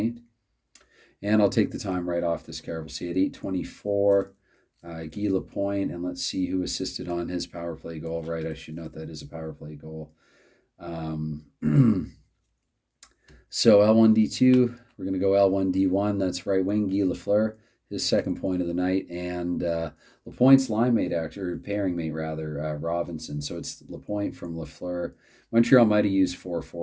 And I'll take the time right off this card. We'll see at 8:24, Guy Lapointe. And let's see who assisted on his power play goal. Right, I should note that is a power play goal. So L1D2, we're going to go L1D1. That's right wing, Guy Lafleur, his second point of the night. And Lapointe's line mate, or pairing mate, rather, Robinson. So it's Lapointe from Lafleur. Montreal might have used four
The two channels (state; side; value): identical; both; correlation 1.00